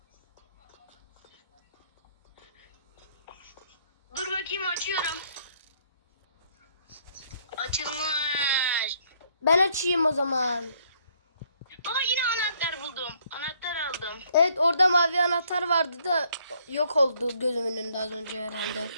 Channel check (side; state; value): both; inverted; correlation -0.66